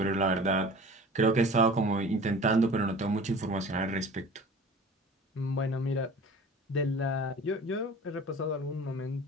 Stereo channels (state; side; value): normal; both; correlation 0.41